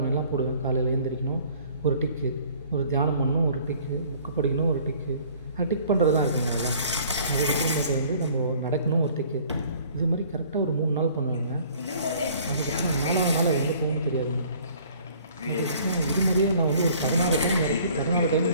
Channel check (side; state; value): both; inverted; correlation -0.54